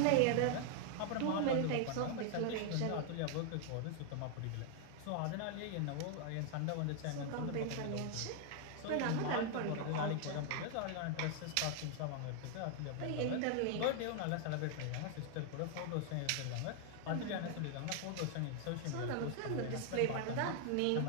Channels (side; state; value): both; different; correlation 0.00